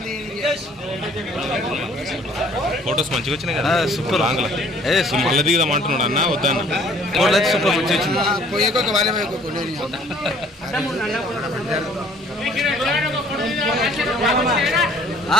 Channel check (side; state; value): both; normal; correlation 0.56